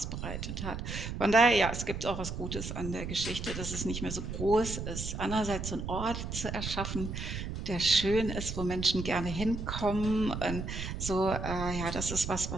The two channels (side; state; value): right; noise; rumble, 6 dB below the sound